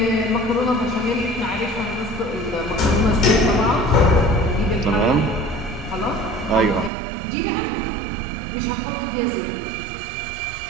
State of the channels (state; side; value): drops out; left; at 6.9 s